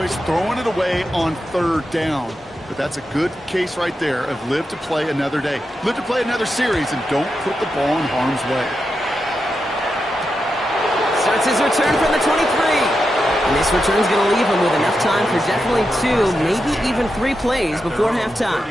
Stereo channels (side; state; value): both; normal; correlation 0.88